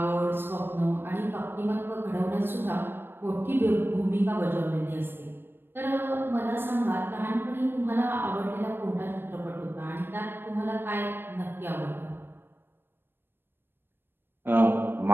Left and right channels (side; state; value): left; late; 0.10 ms